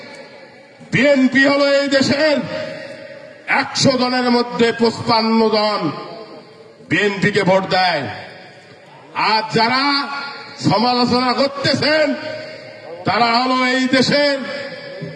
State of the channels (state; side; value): identical; both; correlation 1.00